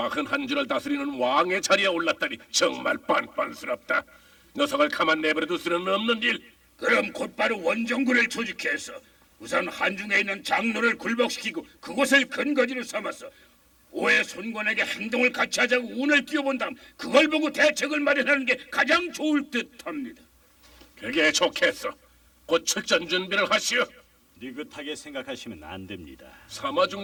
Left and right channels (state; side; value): identical; both; correlation 1.00